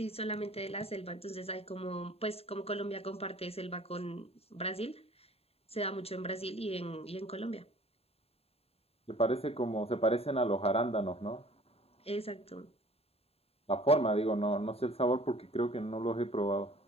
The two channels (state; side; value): late; right; 0.29 ms